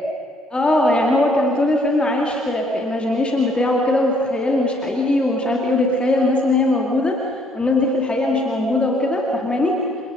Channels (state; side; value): normal; both; correlation 0.65